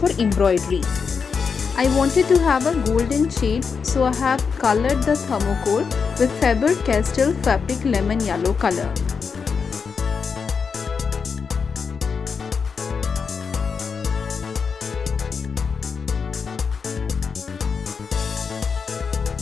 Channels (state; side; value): quieter; right; 5.7 dB